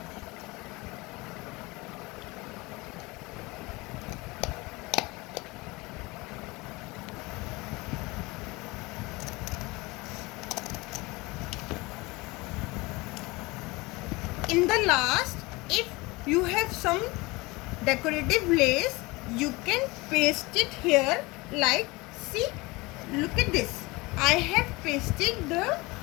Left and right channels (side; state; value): right; quieter; 23.4 dB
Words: In the last, if you have some decorative lace, you can paste it here like, see, look at this. I have pasted the